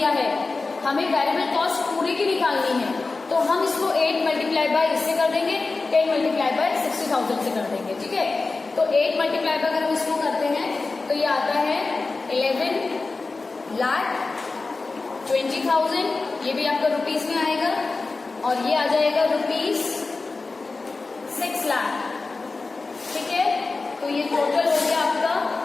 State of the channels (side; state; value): right; quieter; 3.8 dB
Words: है, हमें वेरिएबल कॉस्ट पूरी की निकालनी है, तो हम इसको 8 मल्टीप्लाई बाय इससे कर देंगे, 10 मल्टीप्लाई बाय 60,000 से कर देंगे, ठीक है। तो 8 मल्टीप्लाई बाय अगर हम इसको करते हैं तो ये आता है 11 लाख 20,000, ये भी आपका रुपीस में आएगा, और ये आ जाएगा रुपीस 6 लाख, ठीक है। तो ये टोटल हो गया आपका